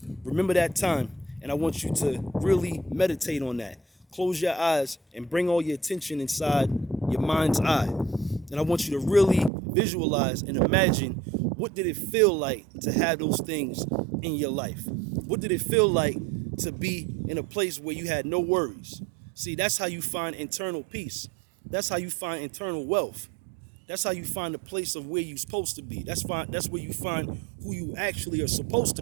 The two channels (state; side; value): drops out; left; at 9.5 s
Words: Remember that time, and I want you to really meditate on that. Close your eyes and bring all your attention inside your mind's eye. And I want you to really visualize and imagine what did it feel like to have those things in your life? What did it feel like to be in a place where you had no worries? See, that's how you find internal peace. That's how you find internal wealth. That's how you find the place of where you're supposed to be. That's where you find who you actually are supposed to